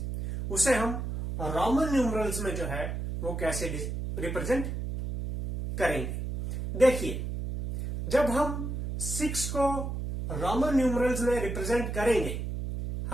उसे हम रोमन न्यूमरल्स में जो है वो कैसे रिप्रेजेंट करेंगे। देखिए, जब हम 6 को रोमन न्यूमरल्स में रिप्रेजेंट करेंगे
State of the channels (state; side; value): noise; right; hum, 4 dB below the sound